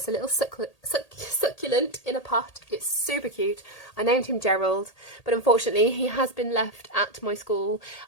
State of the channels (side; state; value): right; late; 1.8 ms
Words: a little succulent in a pot. It's super cute. I named him Gerald, but unfortunately he has been left at my school.